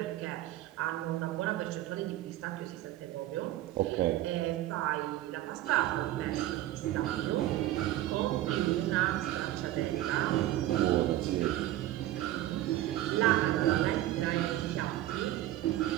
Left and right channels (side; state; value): left; quieter; 14.7 dB